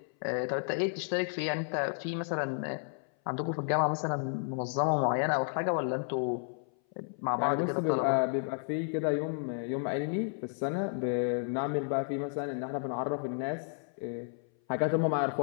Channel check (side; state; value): right; silent; 56 dB below the other